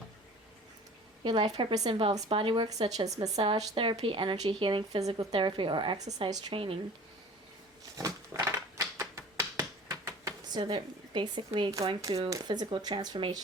Your life purpose involves body work such as massage therapy, energy healing, physical therapy, or exercise training. So they're basically going through physical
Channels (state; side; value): normal; both; correlation 0.44